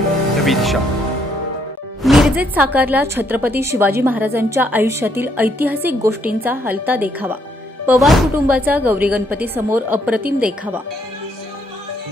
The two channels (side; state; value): both; normal; correlation 0.71